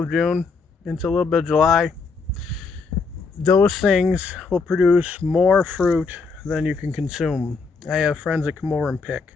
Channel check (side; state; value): right; quieter; 4.6 dB